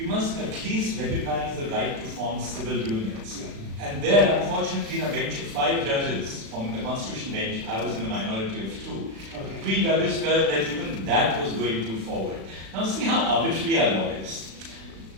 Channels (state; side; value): late; left; 36 ms